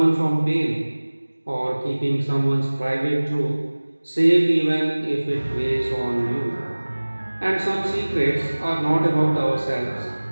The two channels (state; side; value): inverted; both; correlation -1.00